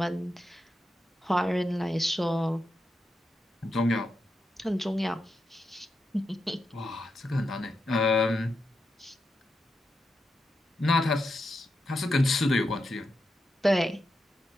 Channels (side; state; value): both; normal; correlation 0.86